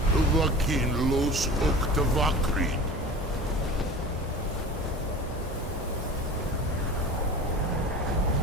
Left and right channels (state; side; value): normal; both; correlation 0.36